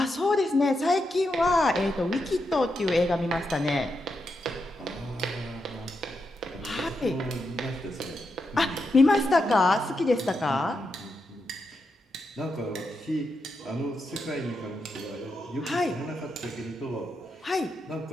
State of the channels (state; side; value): normal; both; correlation 0.85